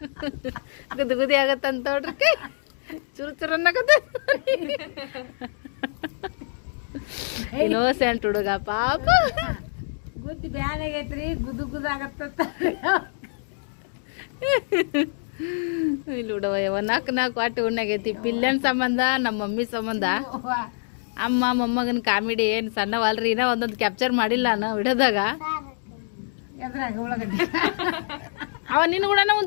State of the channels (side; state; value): right; silent; digital silence